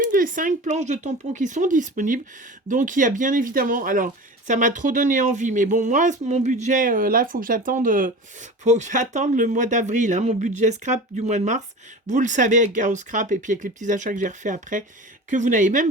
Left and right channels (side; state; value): both; normal; correlation 0.34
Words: des 5 planches de tampons qui sont disponibles. Donc, il y a bien évidemment... Alors, ça m'a trop donné envie. Mais bon, moi, mon budget, là, il faut que j'attende le mois d'avril. Hein, mon budget scrap du mois de mars. Vous le savez, avec Gao Scrap et puis avec les petits achats que j'ai refait après, que vous n'avez